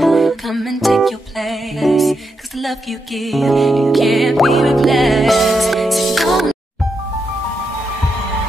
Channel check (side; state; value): both; normal; correlation 0.84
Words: come and take your place. Cause the love you give, it can't be replaced. So don't.